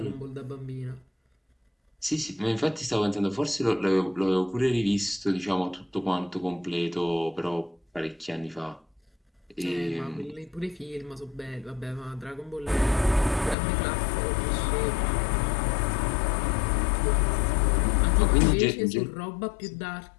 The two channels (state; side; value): drops out; right; at 13.6 s